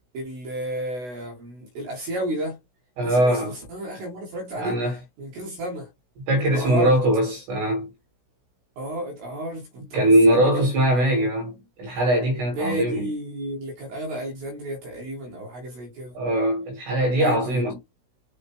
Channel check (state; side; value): late; left; 16 ms